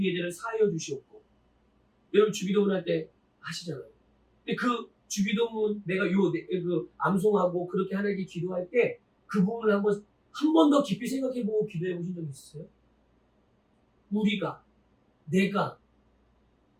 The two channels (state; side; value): identical; both; correlation 1.00